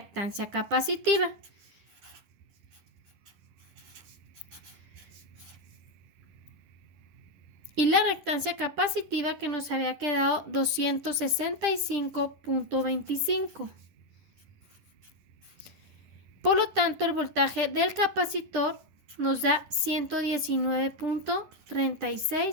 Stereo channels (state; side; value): late; left; 10 ms